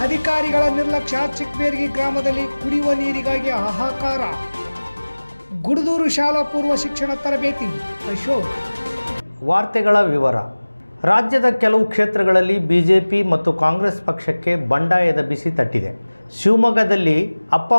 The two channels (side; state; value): both; inverted; correlation -1.00